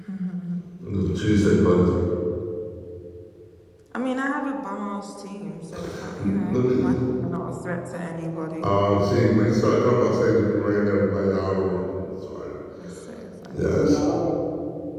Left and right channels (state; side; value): identical; both; correlation 1.00